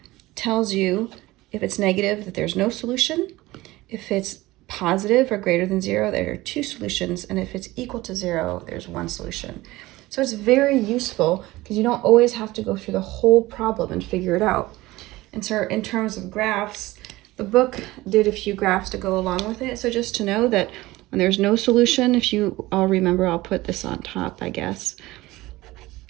tells you if it's negative that there's no solution, if it's positive or greater than 0, there are two solutions, and if it's equal to 0, there's one solution. So it's very useful because you don't always have to go through the whole problem and figure it out. And so in terms of graphs, the book did a few graphs to go along with it. So just to know that when there's no solution, if you all remember, I'll put this on top, I guess.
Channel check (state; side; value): quieter; left; 18.8 dB